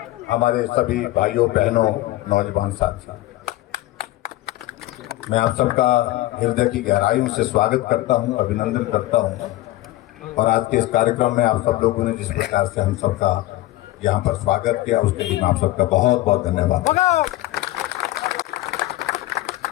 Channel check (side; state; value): right; quieter; 17.0 dB